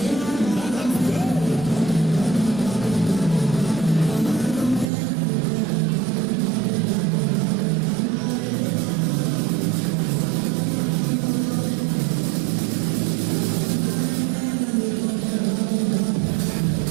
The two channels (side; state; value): left; drops out; at 4.9 s